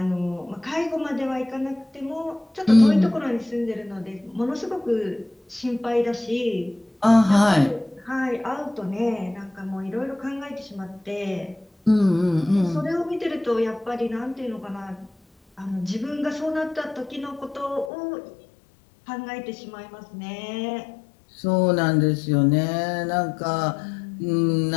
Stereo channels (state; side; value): drops out; right; at 17.9 s